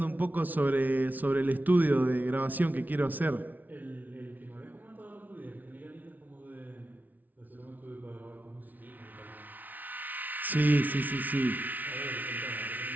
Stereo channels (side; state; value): left; late; 0.079 ms